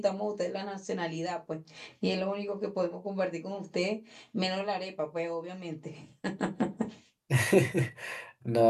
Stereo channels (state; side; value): identical; both; correlation 1.00